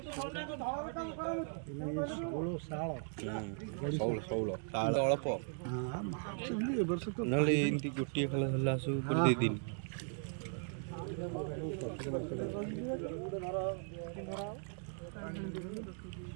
ଅଳ୍ପ ନହେଲେ ଏମିତି ଗୋଟିଏ ଖେଳ ଧରିଲା ଆସୁ ଗୋଟେ 2 ଦିନ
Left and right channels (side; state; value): left; silent; 52 dB below the other